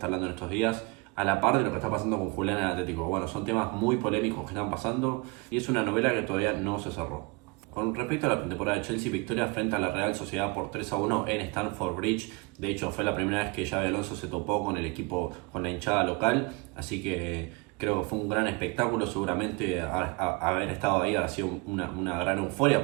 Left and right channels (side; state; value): left; quieter; 28.0 dB